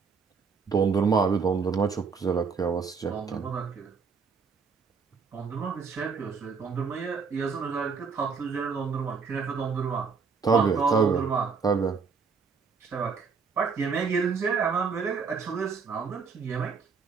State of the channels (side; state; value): left; quieter; 5.3 dB